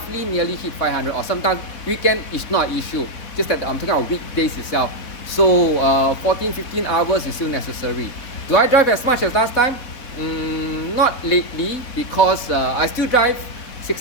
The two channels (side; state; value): right; late; 3.8 ms